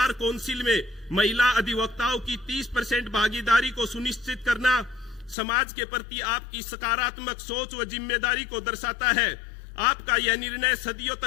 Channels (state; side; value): drops out; right; at 5.4 s